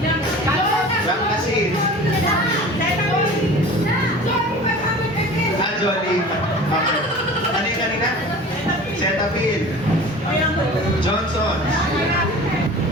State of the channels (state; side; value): normal; both; correlation 0.40